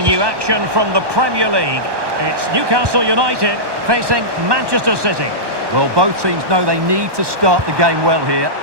you action from the Premier League. It's Newcastle United facing Manchester City. Well, both teams know they need to start the game well here.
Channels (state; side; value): late; left; 1.2 ms